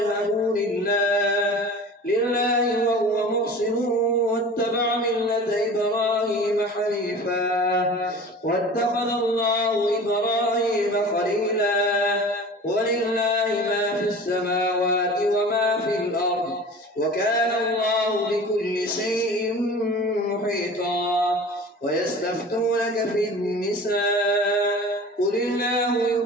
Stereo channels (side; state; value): both; normal; correlation 0.39